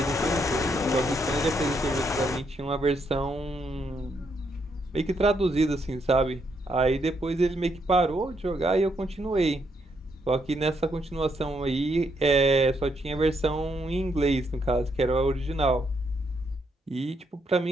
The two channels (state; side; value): normal; both; correlation 0.76